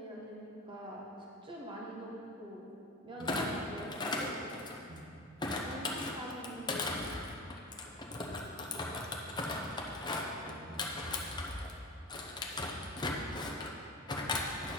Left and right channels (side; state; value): both; normal; correlation 0.29